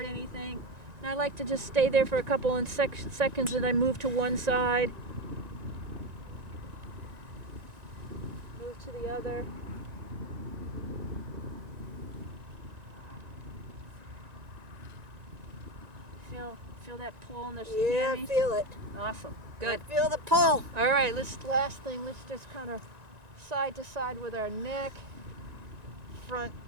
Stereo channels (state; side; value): late; left; 1.9 ms